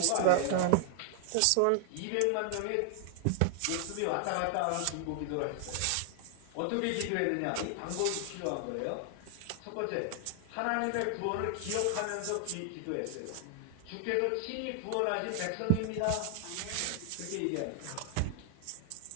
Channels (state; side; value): different; both; correlation 0.00